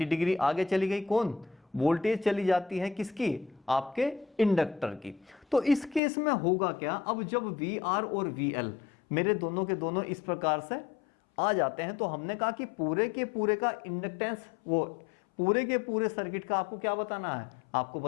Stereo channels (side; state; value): right; drops out; at 6.0 s